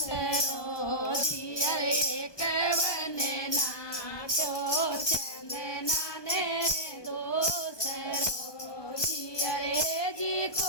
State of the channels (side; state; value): right; late; 1.2 ms